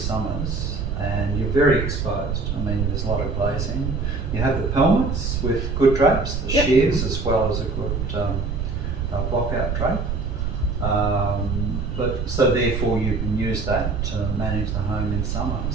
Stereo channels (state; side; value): noise; right; rumble, 2 dB below the sound